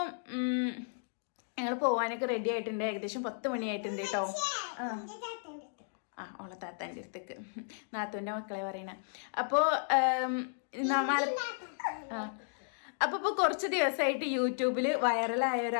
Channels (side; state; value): right; silent; digital silence